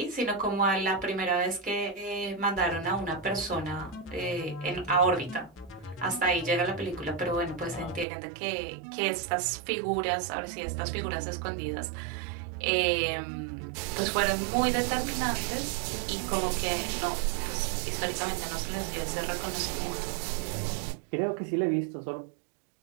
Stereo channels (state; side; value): drops out; left; at 8.1 s